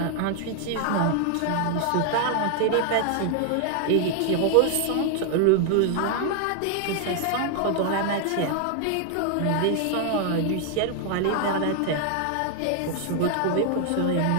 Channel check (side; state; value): both; different; correlation 0.00